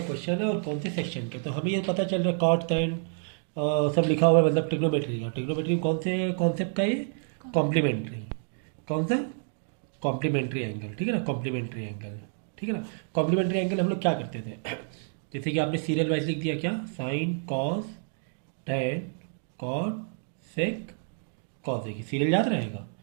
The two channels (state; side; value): silent; left; 59 dB below the other